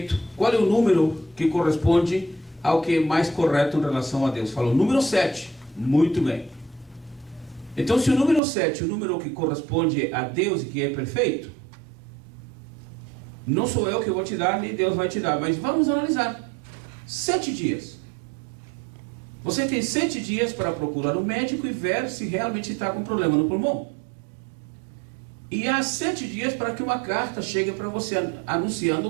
Qual é o número que corresponde ao que é mais correto em relação a Deus? Falou: número 7. Muito bem. Então, se o número 7 é o número que corresponde a Deus e que é perfeito, Não sou eu que vou te dar, nem Deus vai te dar, mas vamos analisar. 7 dias. Você tem 7 dias para procurar um médico e ver se realmente está com problema no pulmão. E há 7 dias para que uma carta chegue para você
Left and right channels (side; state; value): left; drops out; at 8.4 s